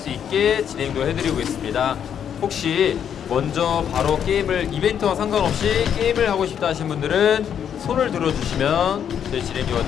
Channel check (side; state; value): right; quieter; 8.6 dB